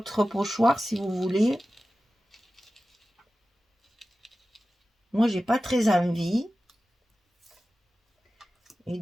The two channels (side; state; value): both; normal; correlation 0.95